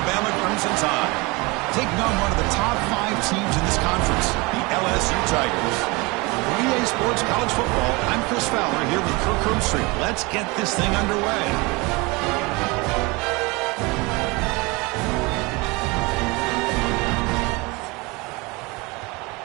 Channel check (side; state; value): left; quieter; 25.7 dB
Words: Crimson Tide, taking on one of the top 5 teams in this conference, the LSU Tigers. For EA Sports College Football, I'm Chris Fowler here with Kirk Herbstreit. Let's get this thing underway.